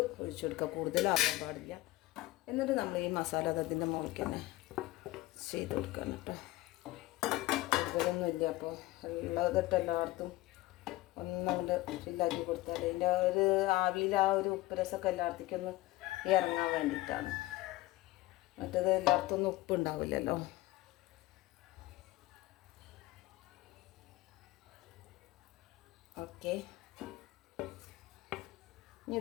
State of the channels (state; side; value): quieter; right; 18.0 dB